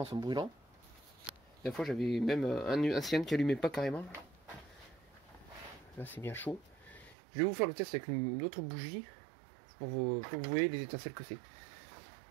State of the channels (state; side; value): drops out; left; at 7.2 s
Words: sont brûlants. Des fois j'avais même un cylindre qui allumait pas carrément. Là c'est bien chaud. Je vais vous faire le test avec une autre bougie. Pour que vous voyez les étincelles que c'est.